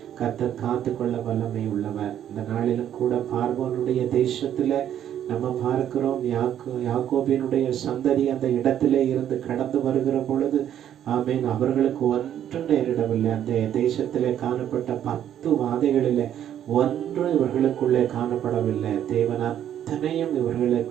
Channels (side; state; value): left; quieter; 10.4 dB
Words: கர்த்தர் காத்து கொள்ள வல்லமை உள்ளவர். இந்த நாளிலும் கூட பார்வோனுடைய தேசத்துல நம்ம பார்க்கிறோம், யாக்கோபினுடைய சந்ததி அந்த இடத்திலே இருந்து கடந்து வருகிற பொழுது அவர்களுக்கு ஒன்றும் நேரிடவில்லை. அந்த தேசத்திலே காணப்பட்ட 10 வாதைகளிலே ஒன்று இவர்களுக்குள்ளே காணப்படவில்லை. தேவன் அத்தனையும்